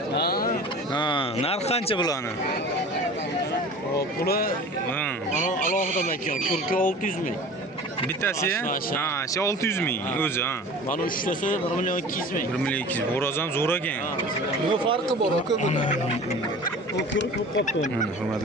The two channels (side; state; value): both; normal; correlation 0.40